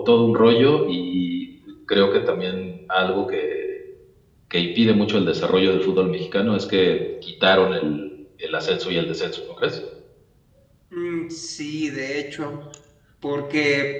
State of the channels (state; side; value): identical; both; correlation 1.00